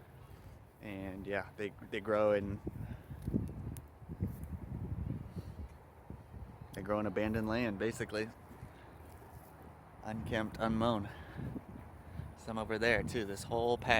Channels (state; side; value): identical; both; correlation 1.00